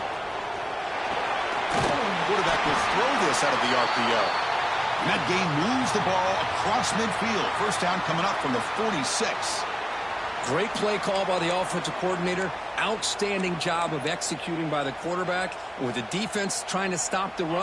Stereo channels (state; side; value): identical; both; correlation 1.00